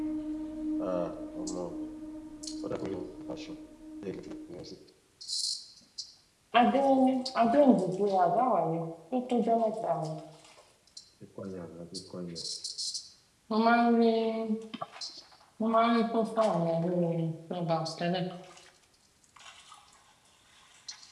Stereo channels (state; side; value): identical; both; correlation 1.00